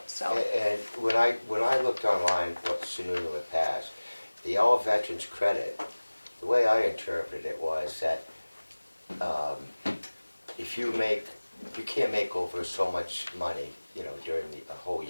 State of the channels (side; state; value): both; inverted; correlation -1.00